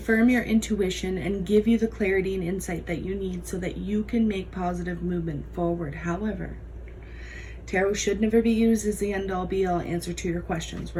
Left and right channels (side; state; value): both; identical; correlation 1.00